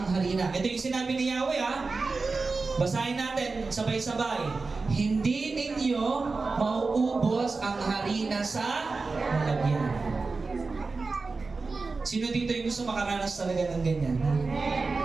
harina. Ito yung sinabi ni Yahweh, ha? Basahin natin, sabay-sabay. Hindi ninyo mauubos ang harina sa lalagyan. Sino dito yung gusto makaranas talaga ng ganyan?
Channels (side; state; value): left; quieter; 4.0 dB